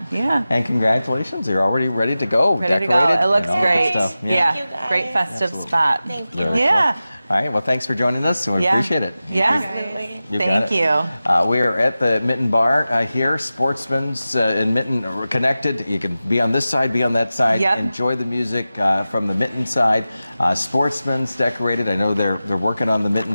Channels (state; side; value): inverted; both; correlation -0.95